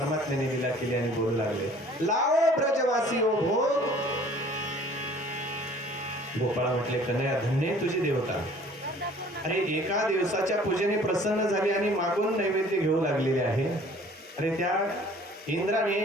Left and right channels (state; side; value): normal; both; correlation 0.52